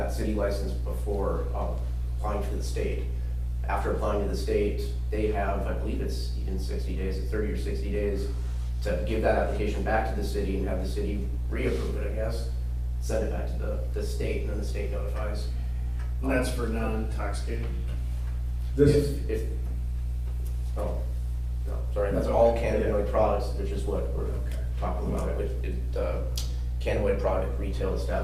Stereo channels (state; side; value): identical; both; correlation 1.00